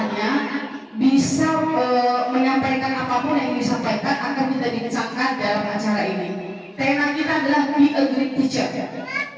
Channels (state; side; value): identical; both; correlation 1.00